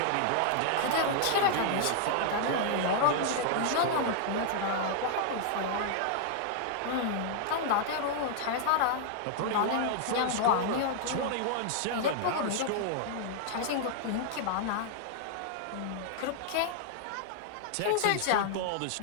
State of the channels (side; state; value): both; different; correlation -0.01